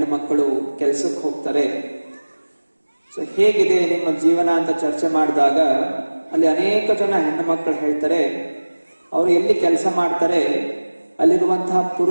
ಮಕ್ಕಳು ಕೆಲಸಕ್ಕೆ ಹೋಗ್ತಾರೆ, ಸೊ ಹೇಗಿದೆ ನಿಮ್ಮ ಜೀವನ ಅಂತ ಚರ್ಚೆ ಮಾಡಿದಾಗ ಅಲ್ಲಿ ಅನೇಕ ಜನ ಹೆಣ್ಣು ಮಕ್ಕಳು ಹೇಳ್ತಾರೆ, ಅವರು ಎಲ್ಲಿ ಕೆಲಸ ಮಾಡ್ತಾರೆ ಅಲ್ಲಿರುವಂತಹ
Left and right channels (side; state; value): both; inverted; correlation -1.00